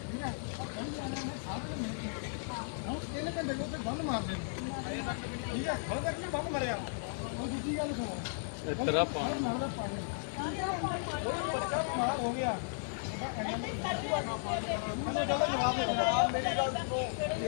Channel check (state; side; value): silent; right; digital silence